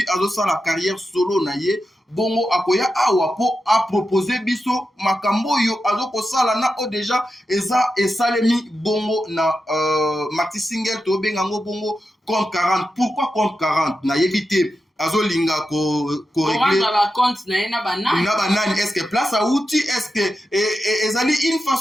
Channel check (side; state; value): both; normal; correlation 0.89